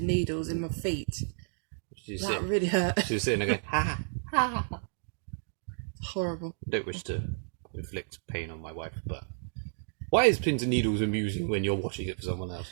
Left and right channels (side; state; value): left; silent; digital silence